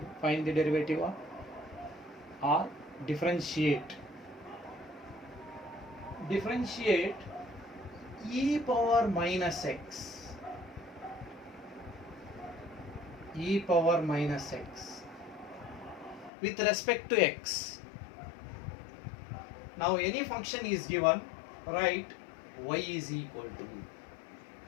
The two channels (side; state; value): right; drops out; at 16.3 s